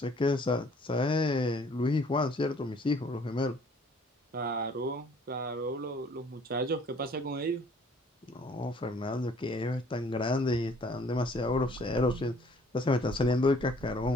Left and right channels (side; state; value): both; normal; correlation 0.57